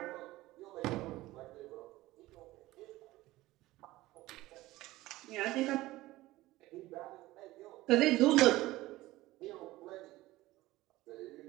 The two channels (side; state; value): left; quieter; 17.7 dB